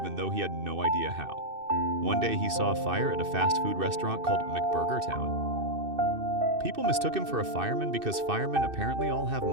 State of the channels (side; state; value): left; late; 2.6 ms